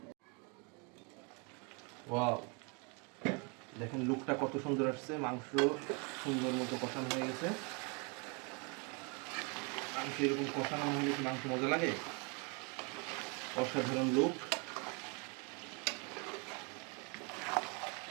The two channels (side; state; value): left; quieter; 33.0 dB